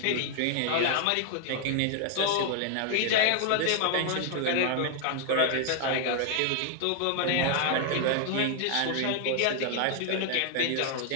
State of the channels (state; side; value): different; both; correlation 0.00